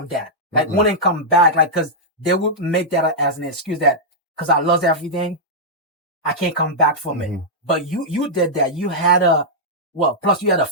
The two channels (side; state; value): both; normal; correlation -0.08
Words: that. Like, wouldn't come back, like, cause they would make that as an excuse that, cause I lost everything, I can't come back from it. But you did that. You had plus you had a